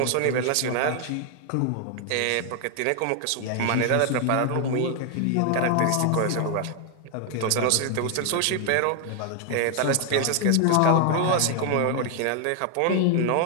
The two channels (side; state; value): both; different; correlation 0.00